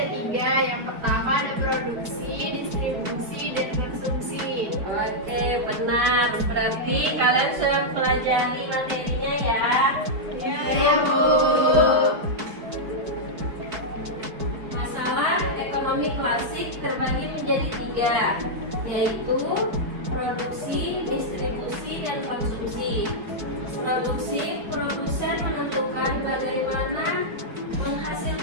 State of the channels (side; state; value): left; late; 4.6 ms